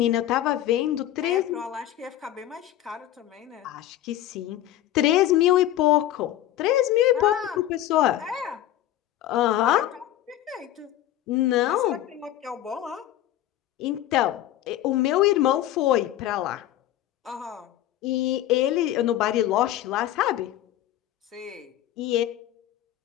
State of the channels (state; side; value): quieter; right; 13.0 dB